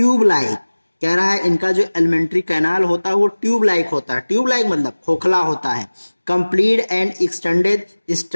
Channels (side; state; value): both; inverted; correlation -1.00